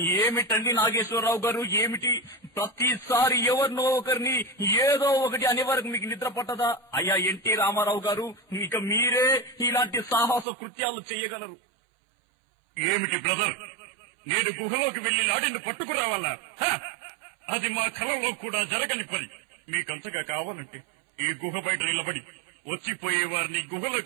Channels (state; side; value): drops out; left; at 10.5 s